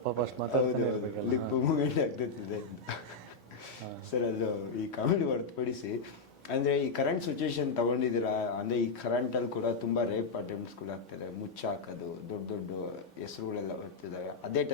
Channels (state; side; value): quieter; right; 3.9 dB